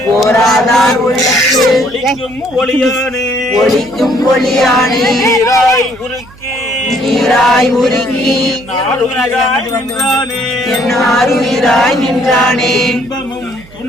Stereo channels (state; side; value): noise; right; hum, 23 dB below the sound